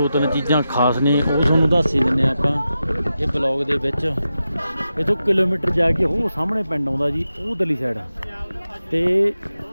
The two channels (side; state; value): both; inverted; correlation -0.91